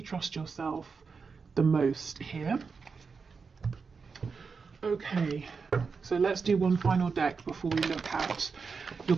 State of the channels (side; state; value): left; quieter; 5.1 dB